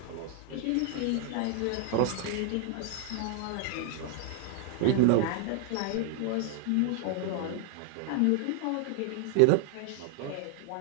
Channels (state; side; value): different; both; correlation 0.00